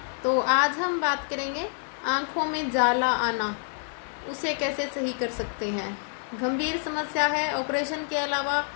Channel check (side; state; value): right; silent; 60 dB below the other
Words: तो आज हम बात करेंगे आँखों में जाला आना, उसे कैसे सही कर सकते हैं। गंभीर समस्या है। ऑपरेशन के अलावा